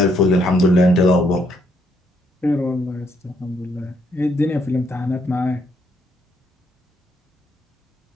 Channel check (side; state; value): both; normal; correlation 0.72